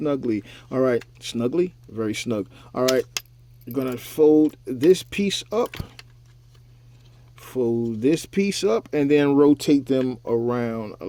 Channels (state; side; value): identical; both; correlation 1.00